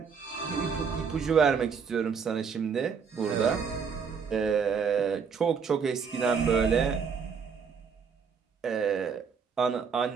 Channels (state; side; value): quieter; left; 6.2 dB